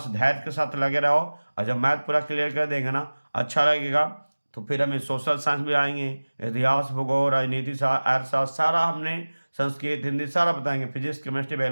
धैर्य के साथ लगे रहो, और जब मैथ पूरा क्लियर कर देंगे ना, अच्छा लगेगा, तो फिर हमें सोशल साइंस भी आएंगे, इतिहास, भूगोल, राजनीति, अर्थशास्त्र, सारा हमने संस्कृत, हिंदी सारा बताएंगे, फिजिक्स, केमिस्ट्री,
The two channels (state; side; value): inverted; both; correlation -1.00